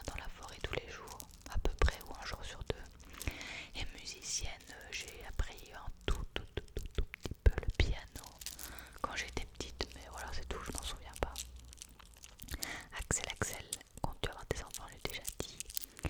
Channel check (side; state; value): both; identical; correlation 1.00